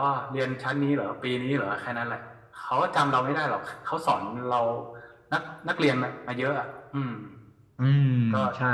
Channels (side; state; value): both; identical; correlation 1.00